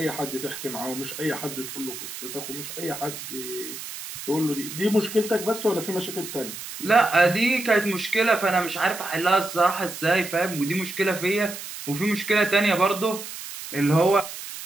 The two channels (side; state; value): right; noise; hiss, 10 dB below the sound